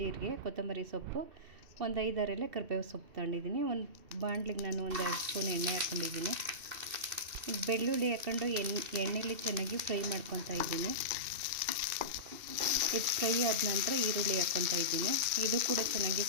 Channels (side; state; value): left; late; 2.7 ms